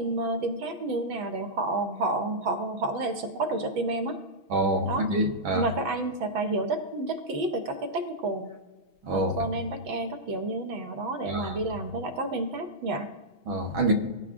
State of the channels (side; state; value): left; late; 6.1 ms